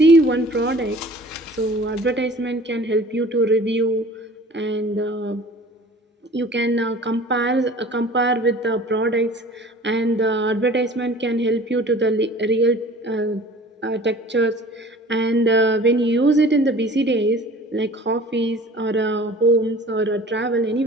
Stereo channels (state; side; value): normal; both; correlation 0.46